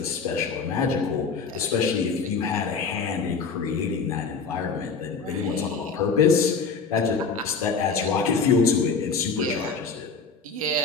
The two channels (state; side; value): quieter; right; 4.9 dB